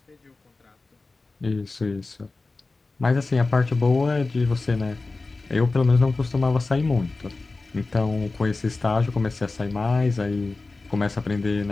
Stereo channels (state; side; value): quieter; right; 3.5 dB